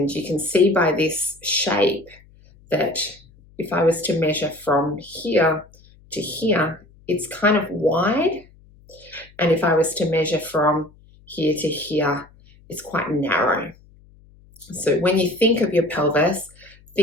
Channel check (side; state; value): left; noise; hum, 27 dB below the sound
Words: you can see by this shape that if I was to measure from here to here, it's kind of wide. And if I was to measure from here to here, it's quite narrow. So when you think of your pelvis,